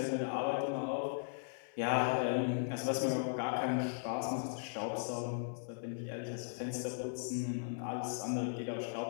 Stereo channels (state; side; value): silent; right; 53 dB below the other